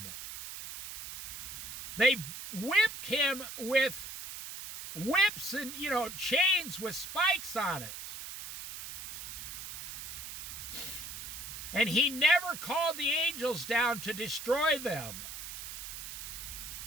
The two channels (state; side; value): noise; right; hiss, 9 dB below the sound